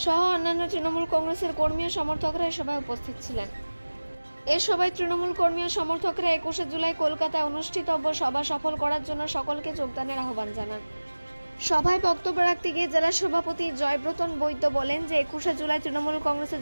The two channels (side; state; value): both; inverted; correlation -1.00